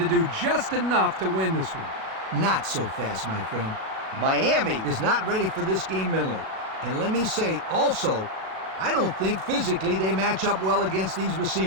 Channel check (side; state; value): left; late; 37 ms